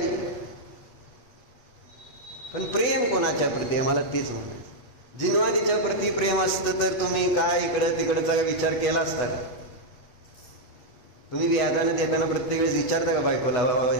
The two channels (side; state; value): right; late; 8.1 ms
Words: पण प्रेम कोणाच्या प्रती आहे? मला तेच म्हणायचं. जिनवानीच्या प्रती प्रेम असतं तर तुम्ही काय इकडं तिकडचा विचार केला असता का? तुम्ही व्याजाने देताना प्रत्येक वेळेस विचारता का बायकोला, बाबा